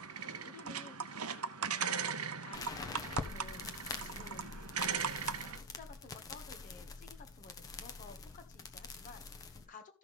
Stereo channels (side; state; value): left; quieter; 3.2 dB